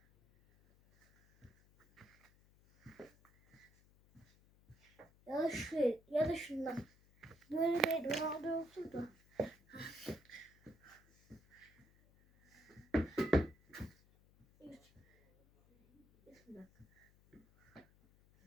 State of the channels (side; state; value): left; noise; hum, 28 dB below the sound